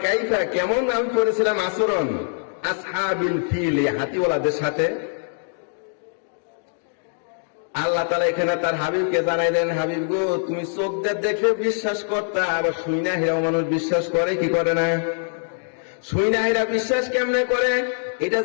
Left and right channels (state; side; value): silent; right; digital silence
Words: কাইফা, কেমন আমি করেছিলাম আচরণ আসহাবিল ফিল, হাতিওয়ালাদের সাথে। আল্লাহ তাআলা এখানে তার হাবিবকে জানাইলেন, হাবিব গো, তুমি চোখ দিয়ে দেখে বিশ্বাস করতা, আবার শুইনা হেরাও মানুষ বিশ্বাস করে কি করে না? শুইনা হেরা বিশ্বাস কেমনে করে? এটা